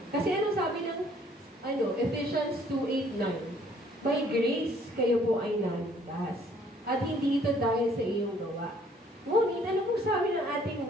Kasi ano sabi ng Ephesians 2:8-9? By grace, kayo po ay naligtas. At hindi ito dahil sa iyong gawa. Ngunit, ano kung sabi ng ating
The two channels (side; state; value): both; normal; correlation 0.60